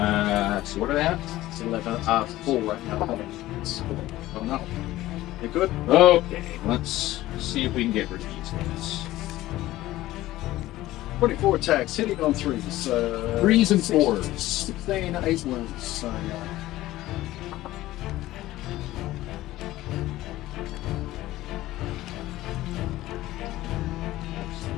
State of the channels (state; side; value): quieter; right; 16.2 dB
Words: You good? Okay, let's see if we can get rid of these guys. 24 attacks, hitting on 3s. 3s and 16, 4s. 16, 8 wounds. So,